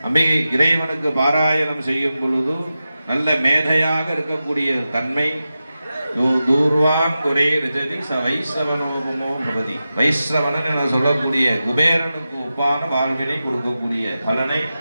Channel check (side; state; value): both; inverted; correlation -0.92